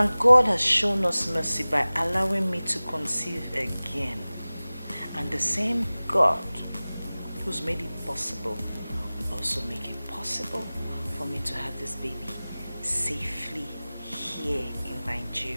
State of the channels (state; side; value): inverted; both; correlation -0.98